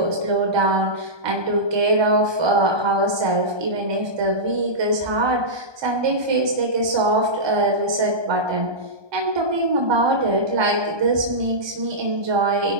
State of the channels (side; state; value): left; late; 1.2 ms